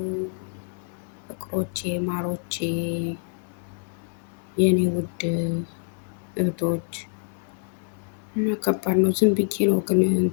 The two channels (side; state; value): right; silent; 61 dB below the other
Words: ፍቅሮቼ፣ ማሮቼ፣ የኔ ውድ እህቶች። እና ከባድ ነው። ዝም ብዬ ነው ግን